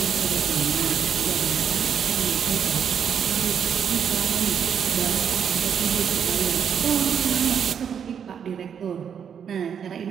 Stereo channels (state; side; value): quieter; left; 7.7 dB